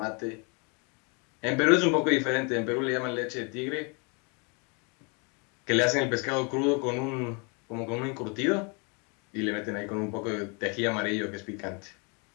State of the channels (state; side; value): quieter; right; 33.5 dB